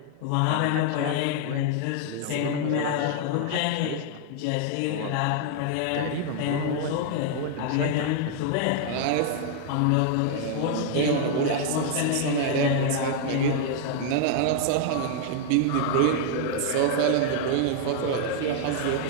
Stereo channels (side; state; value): both; different; correlation 0.00